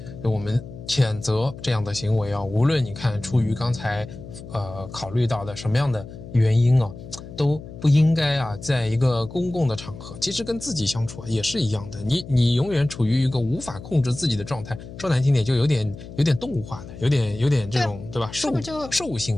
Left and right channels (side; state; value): left; noise; hum, 14 dB below the sound